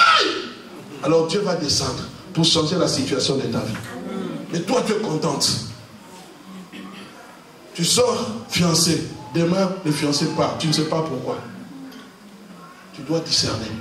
Alors Dieu va descendre pour changer la situation de ta vie. Mais toi, tu es contente. Tu sors fiancé. Demain, le fiancé part. Tu ne sais pas pourquoi. Tu dois discerner.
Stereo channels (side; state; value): both; identical; correlation 1.00